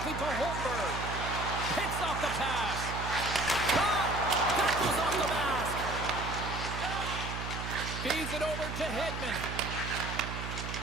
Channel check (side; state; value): right; noise; hum, 6 dB below the sound